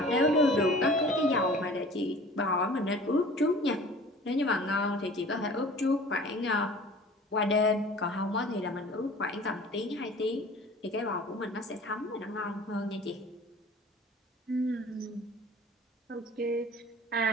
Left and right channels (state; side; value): normal; both; correlation 0.44